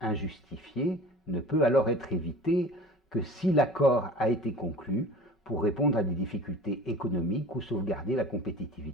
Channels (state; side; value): normal; both; correlation 0.41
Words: ne peut alors être évitée que si l'accord a été conclu pour répondre à des difficultés économiques ou sauvegarder la